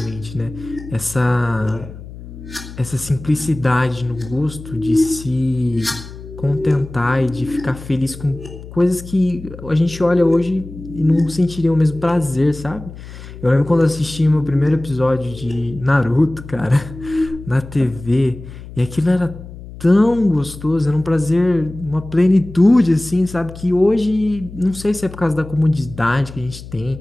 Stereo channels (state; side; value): noise; left; hum, 14 dB below the sound